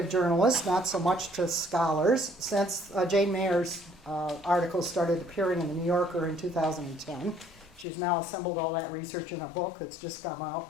journalists, not so much to scholars, since Jane Mayer's articles started appearing in the New Yorker in 2010. She's now assembled all that research in a book that's just come out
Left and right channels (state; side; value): drops out; right; at 7.9 s